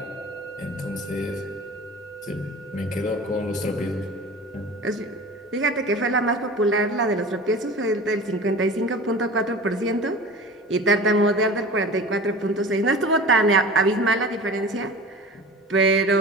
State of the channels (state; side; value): normal; both; correlation 0.37